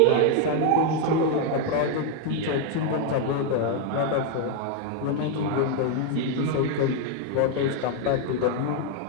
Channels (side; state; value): both; different; correlation 0.00